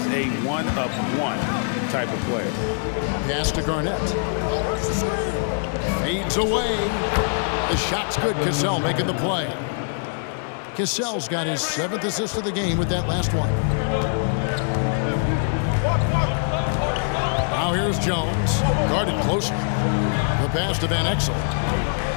a one-of-one type of player. Pass to Garnett. Fades away. The shot's good. Cassell making the play. Cassell's got his 7th assist of the game with that last one. Now here's Jones. Guarded closer. The pass to Van Exel.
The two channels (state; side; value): silent; right; digital silence